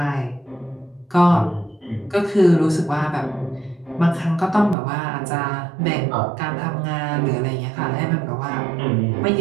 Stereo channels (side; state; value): left; drops out; at 4.8 s